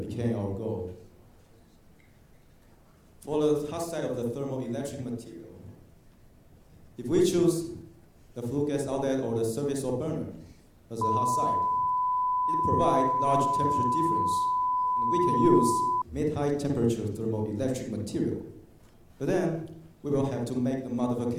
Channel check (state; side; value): identical; both; correlation 1.00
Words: our goal. For the hot side of the thermoelectric material, if we choose the flue gas outlet or the service or burner as the hot side, it provides large temperature difference, and we can use mid-high temperature thermoelectric material. But then we will have to make a